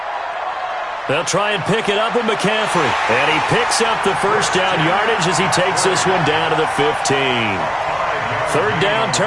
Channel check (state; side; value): identical; both; correlation 1.00